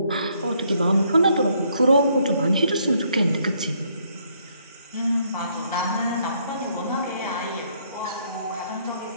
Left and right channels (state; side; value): inverted; both; correlation -0.70